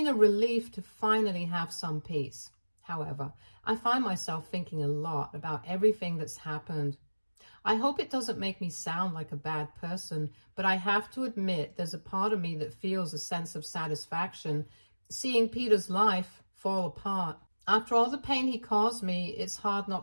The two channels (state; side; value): inverted; both; correlation -1.00